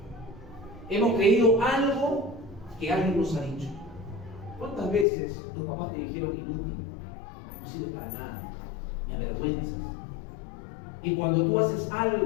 Hemos creído algo que alguien nos ha dicho. ¿Cuántas veces tus papás te dijeron inútil? No sirve para nada, me avergüenzas. Y cuando tú haces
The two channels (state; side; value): drops out; right; at 5.1 s